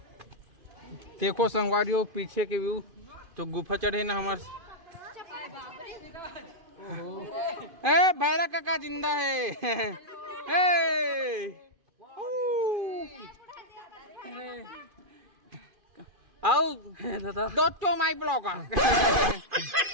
देखो संगवारियों पीछे के व्यू तो गुफा चढ़े ना हमारे। ए भैरा काका जिंदा है। आओ दोस्तों माय ब्लॉगर।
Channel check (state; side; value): late; left; 2.5 ms